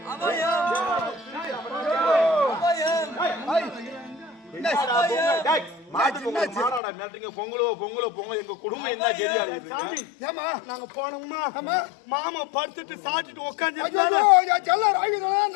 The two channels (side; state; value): right; drops out; at 6.8 s